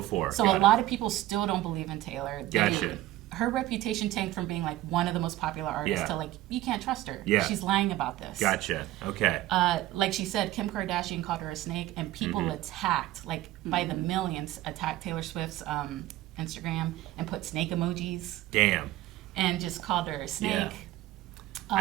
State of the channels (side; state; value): left; quieter; 15.6 dB